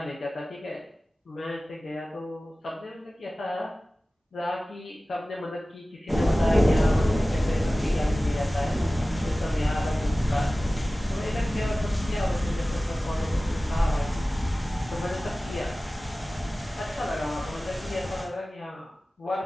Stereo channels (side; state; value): both; normal; correlation 0.97